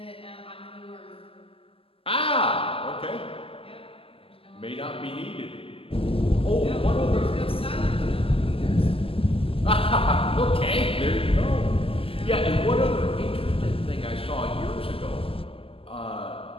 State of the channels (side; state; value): right; late; 0.26 ms